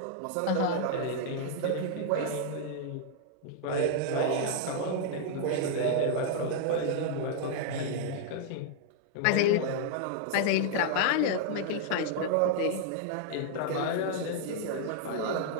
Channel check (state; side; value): different; both; correlation -0.01